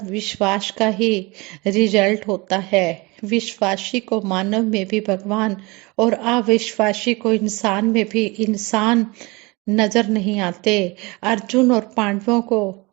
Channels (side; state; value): left; quieter; 25.1 dB